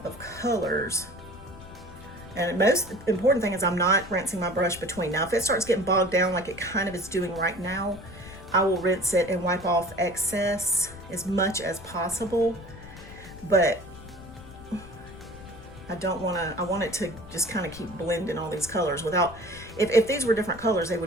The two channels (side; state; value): left; noise; rumble, 16 dB below the sound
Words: of colors. And the most important thing is I'm not rinsing my brush between. Now, if it starts getting bogged down like it kind of is doing right now, I will rinse it and wipe off excess as much as possible. But I don't want to, I want it to just kind of keep blending all these colors without, if these were different colors, they